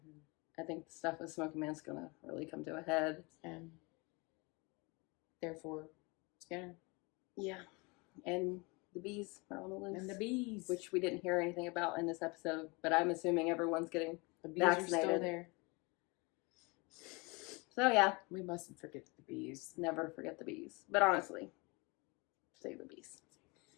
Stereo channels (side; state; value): right; quieter; 27.8 dB